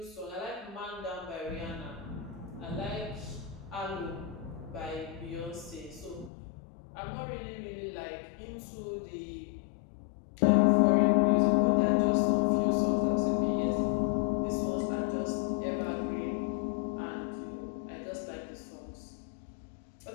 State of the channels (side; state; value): right; drops out; at 6.3 s